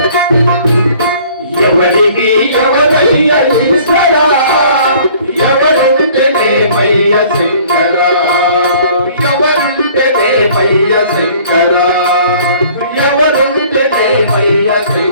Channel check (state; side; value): inverted; both; correlation -0.53